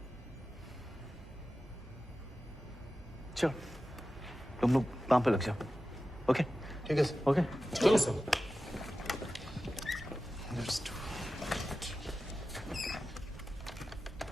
चलो तुम लोग काम पे लग जाओ। ओके ठीक है सर। ओके चलो सर।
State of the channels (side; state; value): both; normal; correlation 0.94